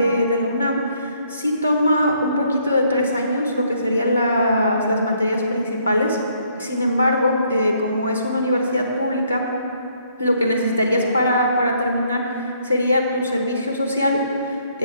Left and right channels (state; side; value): inverted; both; correlation -0.68